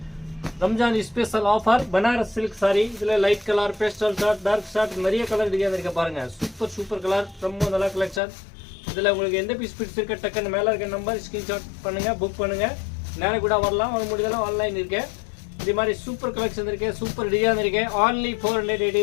Ramzan special offer Banaras silk sari. இதுல light colour, pastel shade, dark shade, நிறைய கலர் டிசைன் இருக்கு பாருங்க. சூப்பர் கலர், ரொம்ப நல்ல கலெக்ஷன். இதுல உங்களுக்கு எந்த பீஸ் பிடிச்சிருக்க டக்குன்னு மேல இருக்க நம்பர் ஸ்கிரீன்ஷாட் பண்ணுங்க, புக் பண்ணுங்க. நேர கூட வரலாம், வர முடியலாம், ஆன்லைன் இருக்கு. இது மாதிரி சூப்பர் கலெக்ஷன் இருக்கு, சூப்பர் டிசைன் இருக்கு. only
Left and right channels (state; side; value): drops out; right; at 8.2 s